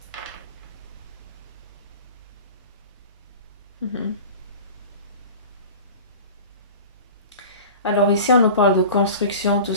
Mhm. Alors ici, on nous parle de construction tout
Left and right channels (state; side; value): inverted; both; correlation -0.37